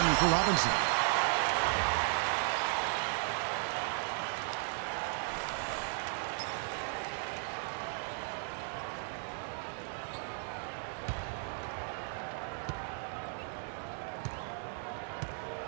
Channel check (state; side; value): silent; left; 54 dB below the other